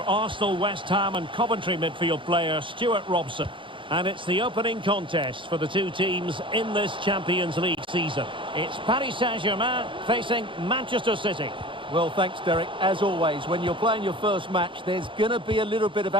Arsenal, West Ham and Coventry midfield player, Stuart Robson. And it's the opening contest for the two teams in this Champions League season. It's Paris Saint-Germain facing Manchester City. Well, thanks, Derek. As always, when you're playing your first match, there's going to be a little bit of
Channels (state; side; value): late; left; 0.24 ms